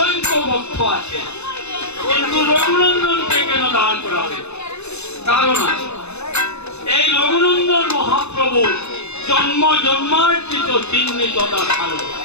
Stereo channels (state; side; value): late; right; 0.81 ms